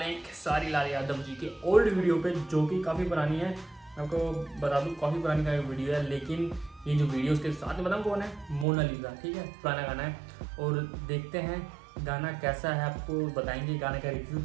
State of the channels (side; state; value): left; drops out; at 8.7 s